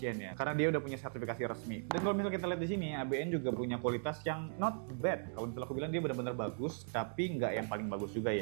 ya, karena dia udah punya sertifikasi resmi. Dan kalau misalnya kita lihat di sini, ABN juga punya kualitas yang not bad. Kalau misalnya aku bilang dia benar-benar bagus, tapi nggak yang paling bagus juga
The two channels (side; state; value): left; silent; 52 dB below the other